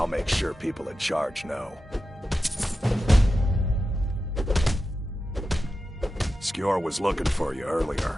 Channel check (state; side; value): normal; both; correlation 0.91